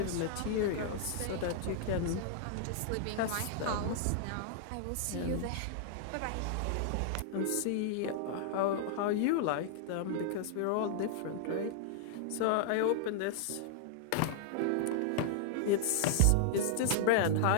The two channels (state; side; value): different; both; correlation -0.01